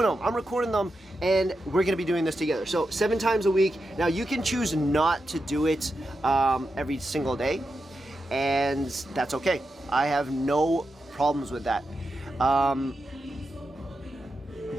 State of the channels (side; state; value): both; normal; correlation 0.88